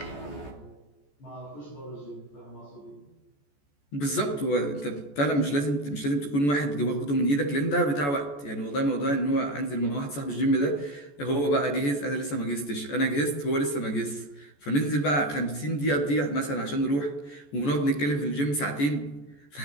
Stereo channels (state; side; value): late; right; 14 ms